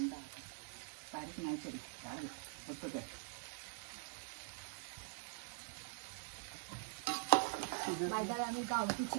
बारीक नाही तरी जाड फक्त काय बाजारात आम्ही गावठी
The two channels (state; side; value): silent; left; digital silence